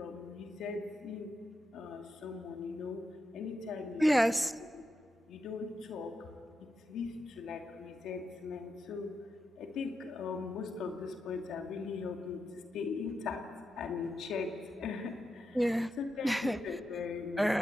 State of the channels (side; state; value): both; normal; correlation 0.86